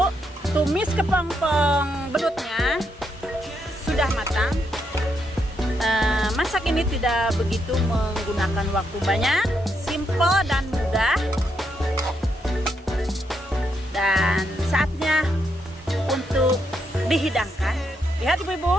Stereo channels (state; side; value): normal; both; correlation 0.79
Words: tumis kepompong belutnya sudah matang. Masak ini tidak begitu menggunakan waktu banyak, simple dan mudah. Dan saatnya untuk dihidangkan. Lihat